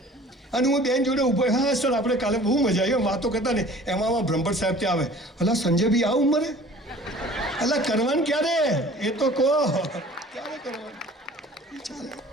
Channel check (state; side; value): normal; both; correlation 0.47